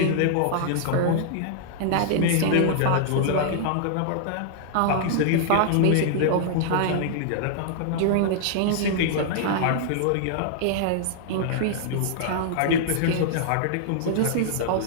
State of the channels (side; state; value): both; different; correlation -0.01